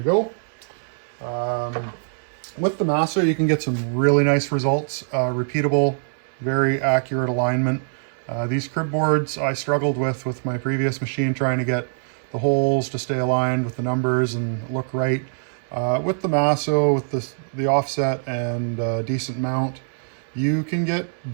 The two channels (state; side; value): silent; left; digital silence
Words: go. With the Masso, you can get some really nice results, repeatable, very accurate alignment. These crib boards I struggled with my previous machine, trying to get the holes to stay aligned with the numbers and look right. With the Masso, with the offset and decent mount, you can get